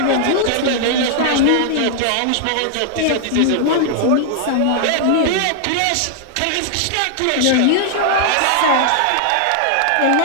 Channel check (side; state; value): both; different; correlation -0.01